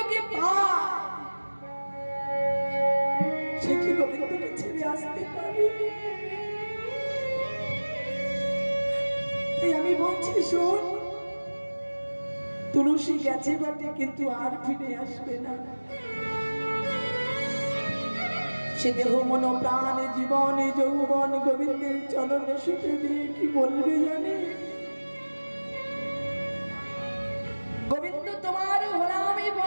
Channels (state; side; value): inverted; both; correlation -1.00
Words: পায়, সে কি গোবিন্দকে ছেড়ে আসতে পারে? তাই আমি বলছি, শোন, তুলসী গেছে বটে, কিন্তু আর ফিরে আসবে না। সে দেহ মন প্রাণ জীবন যৌবন গোবিন্দের চরণে সুখে দিয়ে কি বলবে জানে? গোবিন্দ তোমার হলামি